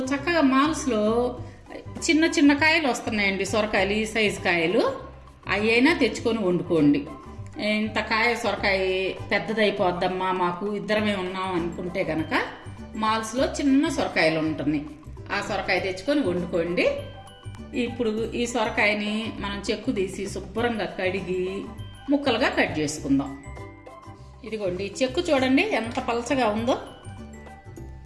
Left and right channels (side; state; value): both; identical; correlation 1.00